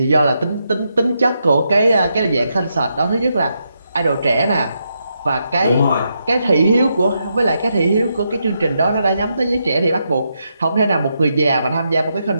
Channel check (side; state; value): both; inverted; correlation -0.82